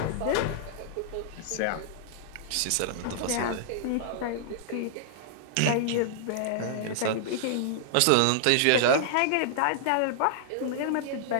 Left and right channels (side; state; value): both; different; correlation -0.01